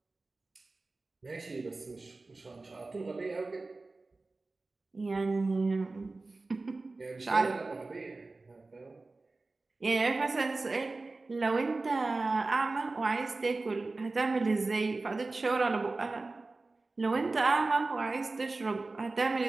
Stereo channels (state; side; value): quieter; left; 3.4 dB